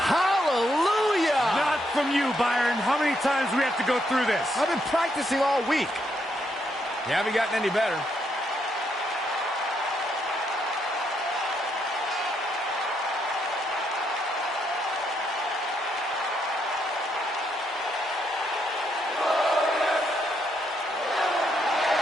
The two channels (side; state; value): both; normal; correlation 0.77